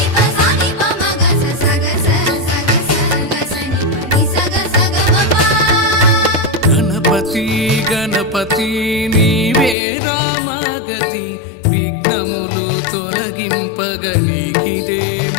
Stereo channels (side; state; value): right; drops out; at 9.8 s